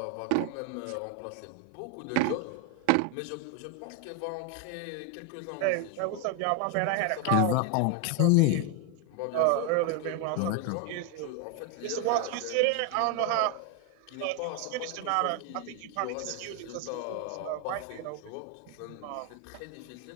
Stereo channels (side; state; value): both; different; correlation 0.01